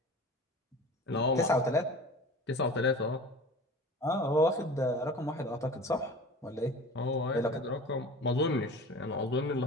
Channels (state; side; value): normal; both; correlation 0.38